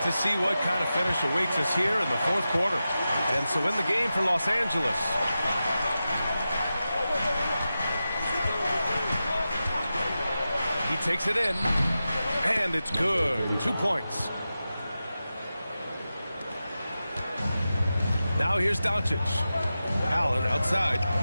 to see what kind of finish awaits us here in the 4th quarter. And so in the game for Los Angeles, he takes it in, and it's good. 2 points. Now here's Doncic. Allen outside.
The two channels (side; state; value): both; inverted; correlation -0.93